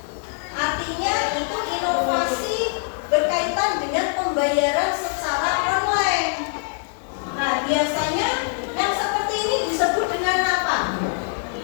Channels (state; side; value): silent; right; 60 dB below the other